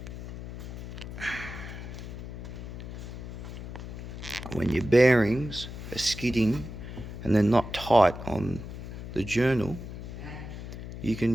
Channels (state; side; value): noise; left; hum, 9 dB below the sound